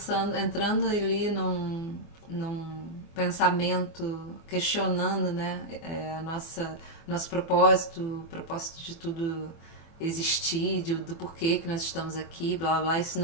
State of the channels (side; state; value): right; late; 24 ms